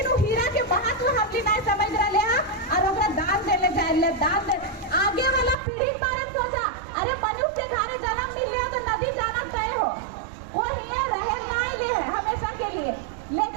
वो हीरा के महत्व हमने नहीं समझ रहे हैं और ओकरा दान देले जाए दान दे आगे वाला पीढ़ी बारे में सोचा अरे मनुष्य के घरे जन्म मिल लियो तो नदी जाना तय हो, वो हिया रहे ना ले हमेशा के लिए,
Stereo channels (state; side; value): drops out; left; at 5.6 s